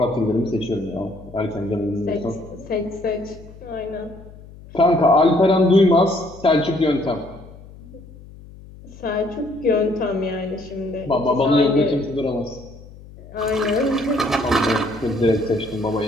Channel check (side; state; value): left; noise; hum, 19 dB below the sound